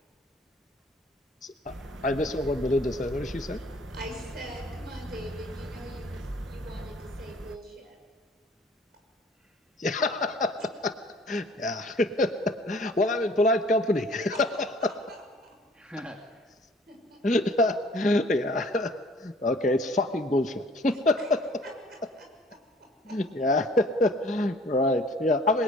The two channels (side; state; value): both; normal; correlation 0.54